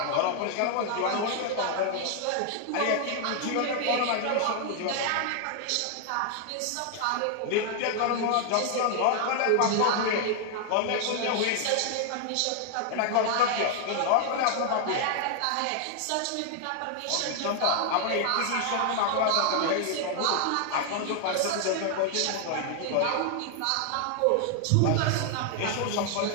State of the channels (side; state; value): both; different; correlation 0.00